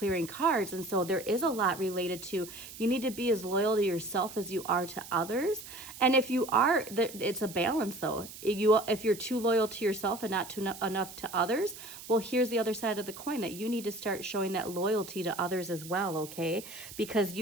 cards. And so there is a lot related to, you need to be as loyal to yourself as you are to others. And if you are, it's a balance though. If you're too loyal to yourself and not too enough to others, well, here's the other side of the coin, that you need to start showing that loyalty to others as well, okay? Because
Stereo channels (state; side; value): noise; right; hiss, 14 dB below the sound